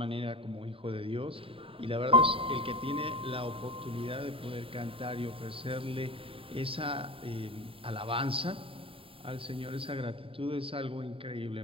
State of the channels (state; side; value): late; left; 0.26 ms